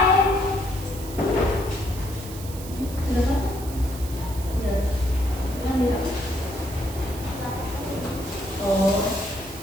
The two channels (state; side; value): noise; right; hiss, 14 dB below the sound